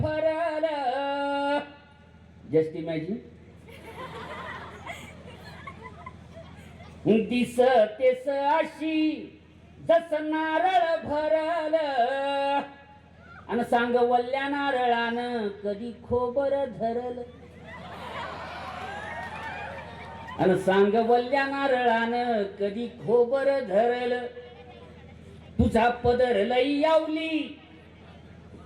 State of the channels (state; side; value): identical; both; correlation 1.00